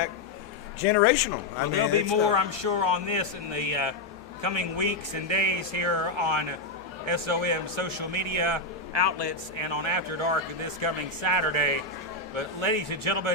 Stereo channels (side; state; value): right; quieter; 3.1 dB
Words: generational. Well, there'll be more, I'm sure, on this in the coming weeks and days here on SOM social media outlets and on After Dark this coming Saturday. But ladies and